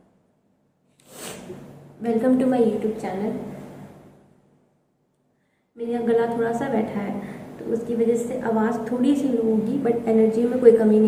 Welcome to my YouTube channel. मेरा गला थोड़ा सा बैठा है तो उसकी वजह से आवाज़ थोड़ी सी लो होगी, बट एनर्जी में कोई कमी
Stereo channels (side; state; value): both; identical; correlation 1.00